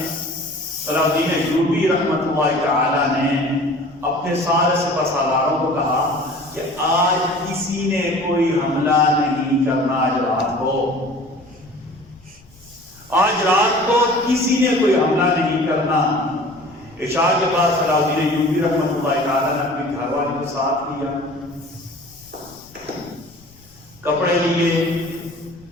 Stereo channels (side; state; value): left; noise; rumble, 27 dB below the sound